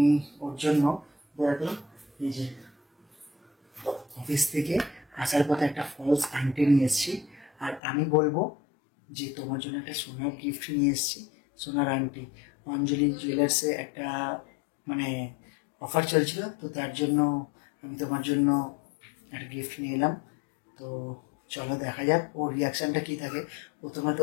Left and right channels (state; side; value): drops out; right; at 7.8 s